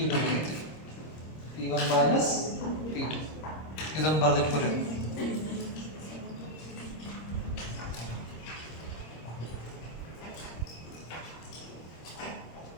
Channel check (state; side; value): late; right; 26 ms